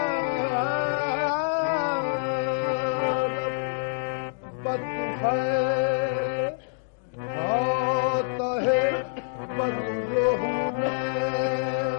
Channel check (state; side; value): silent; right; digital silence